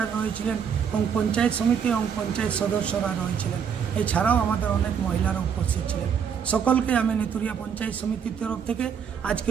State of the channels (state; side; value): quieter; left; 7.3 dB